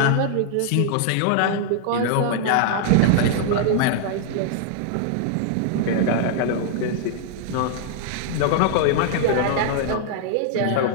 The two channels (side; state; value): both; different; correlation -0.01